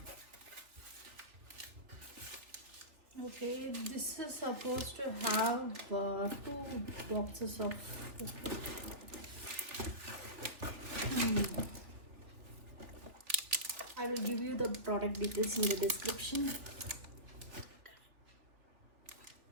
Okay, this is supposed to have two boxes of. I will give you the product details in the description.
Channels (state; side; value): late; left; 3.1 ms